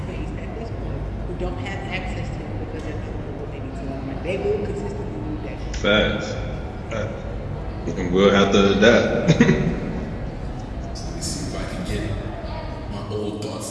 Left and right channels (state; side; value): identical; both; correlation 1.00